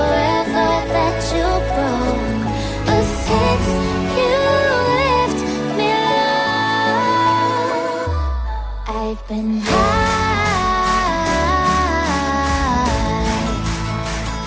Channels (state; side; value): identical; both; correlation 1.00